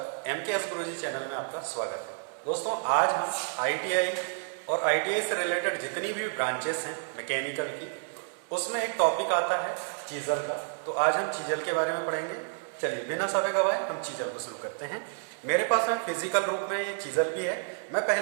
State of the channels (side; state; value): left; silent; 58 dB below the other